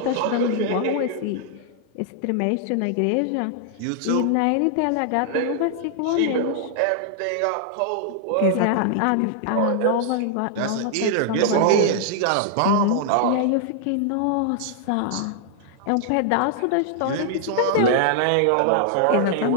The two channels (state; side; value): different; both; correlation -0.01